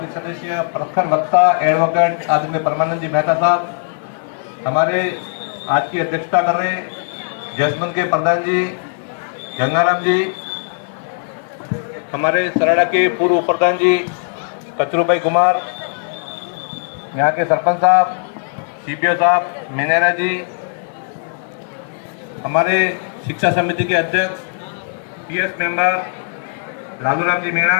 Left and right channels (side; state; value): right; silent; 62 dB below the other